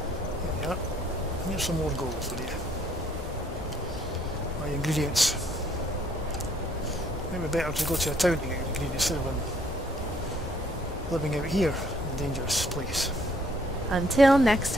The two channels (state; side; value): normal; both; correlation 0.65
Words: There you are. Here's some more gold for you. My ingredients. Maybe better to go to a town to get your ingredients instead of living out here in a dangerous place. Until next